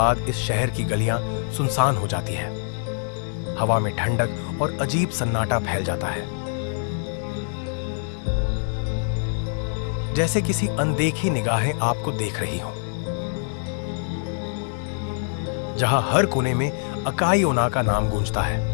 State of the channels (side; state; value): right; silent; digital silence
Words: इस शहर की गलियां सुनसान हो जाती है। हवा में ठंडक और अजीब सन्नाटा फैल जाता है, जैसे किसी अनदेखी निगाहें आपको देख रही हों। जहां हर कोने में अकाई ओना का नाम गूंजता है।